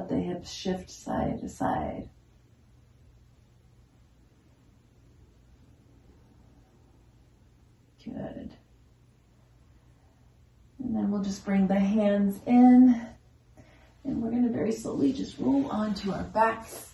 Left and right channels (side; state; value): both; identical; correlation 1.00